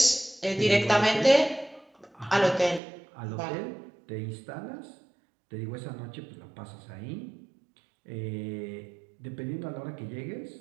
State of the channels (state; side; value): drops out; left; at 2.8 s